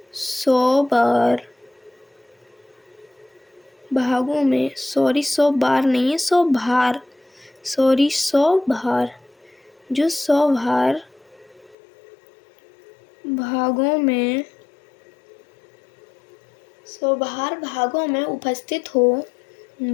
100 भागों में, 100 बार नहीं है, 100 भार, 100 भार, जो 100 भागों में 100 भागों में उपस्थित हो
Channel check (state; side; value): drops out; right; at 11.8 s